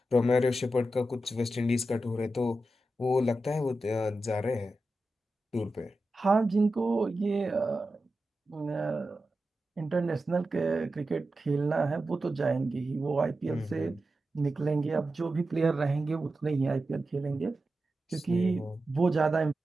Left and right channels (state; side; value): normal; both; correlation 0.91